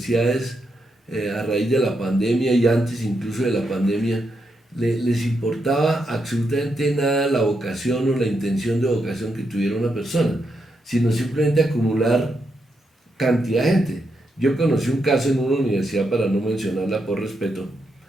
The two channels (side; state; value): both; normal; correlation 0.82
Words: a raíz de la pandemia y antes incluso de la pandemia, les importaba absolutamente nada la vocación o la intención de vocación que tuviera una persona, sino simplemente acumular cantidad de gente. Yo conocí un caso en una universidad, para no mencionarla por respeto,